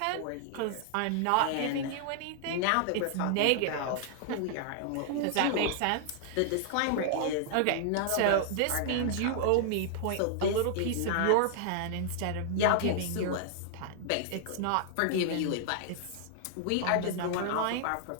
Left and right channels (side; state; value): both; different; correlation -0.01